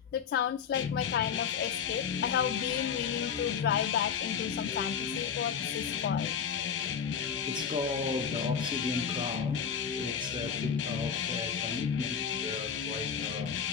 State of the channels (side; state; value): right; quieter; 7.1 dB